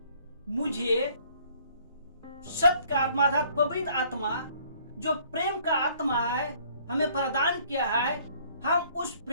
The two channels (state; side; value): inverted; both; correlation -0.60